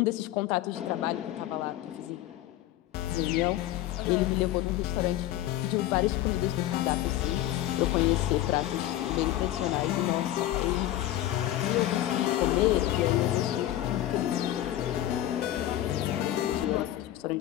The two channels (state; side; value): quieter; right; 13.6 dB